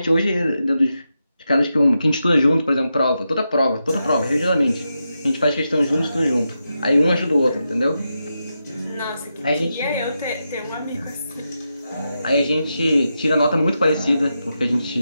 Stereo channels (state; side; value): inverted; both; correlation -0.87